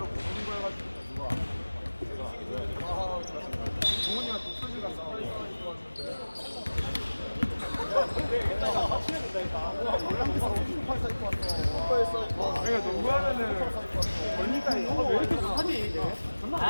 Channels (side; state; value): both; inverted; correlation -1.00